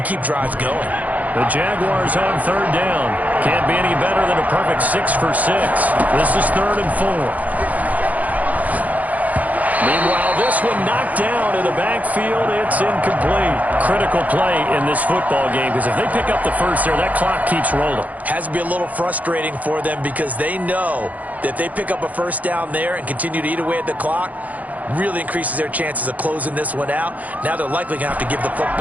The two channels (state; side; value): late; left; 0.076 ms